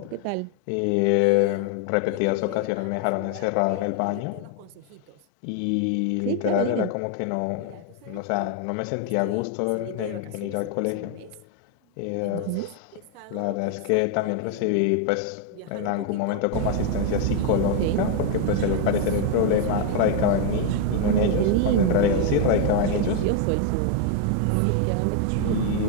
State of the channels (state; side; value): different; both; correlation 0.00